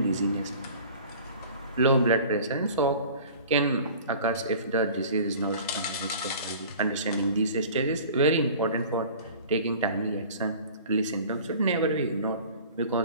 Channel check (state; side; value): inverted; both; correlation -0.44